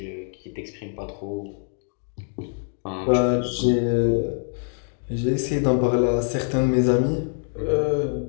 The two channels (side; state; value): right; silent; 57 dB below the other